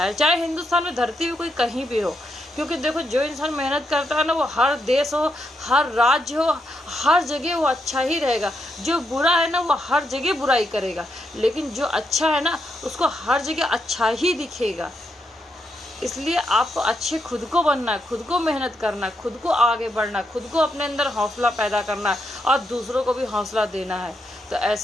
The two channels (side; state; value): both; normal; correlation 0.81